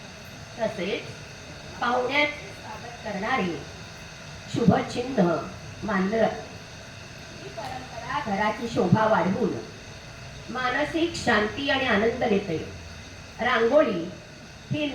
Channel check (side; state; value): both; identical; correlation 1.00